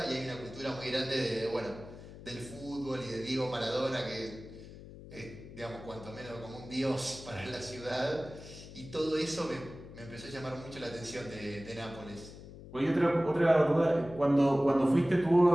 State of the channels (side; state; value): left; noise; hum, 15 dB below the sound